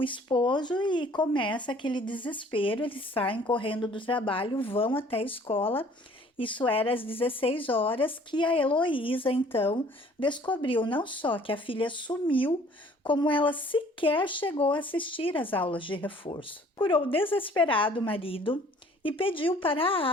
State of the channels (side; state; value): both; normal; correlation 0.55